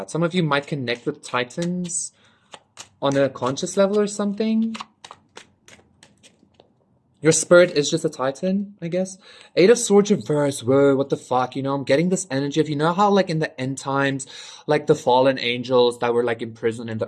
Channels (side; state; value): both; identical; correlation 1.00